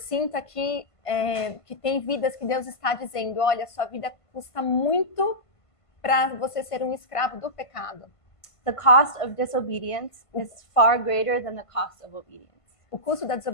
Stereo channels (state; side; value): late; right; 1.5 ms